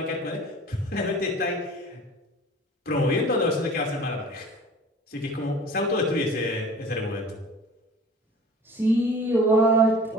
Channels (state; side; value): normal; both; correlation 0.44